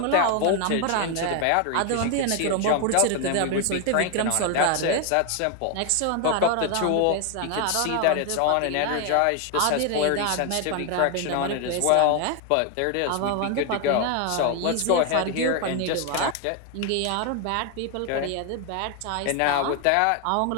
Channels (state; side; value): different; both; correlation 0.01